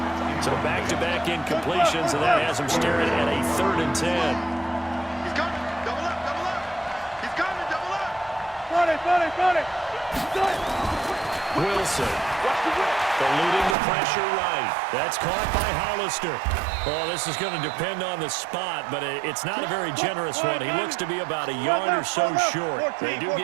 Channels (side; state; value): left; drops out; at 13.8 s